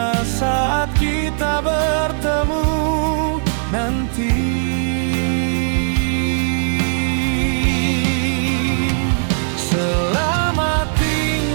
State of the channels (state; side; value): silent; left; digital silence